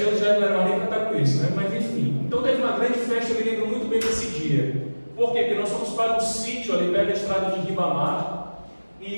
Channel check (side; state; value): both; inverted; correlation -1.00